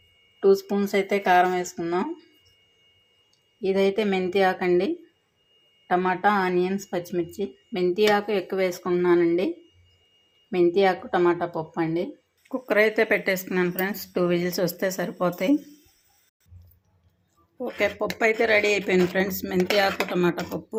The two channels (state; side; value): identical; both; correlation 1.00